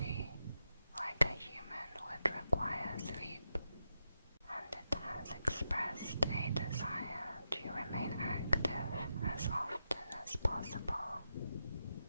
like a human would require sleep, and it has expressed a desire to remain active as often as possible.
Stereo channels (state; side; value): inverted; both; correlation -0.87